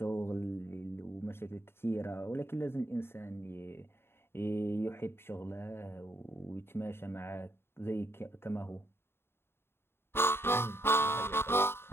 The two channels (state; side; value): late; right; 0.11 ms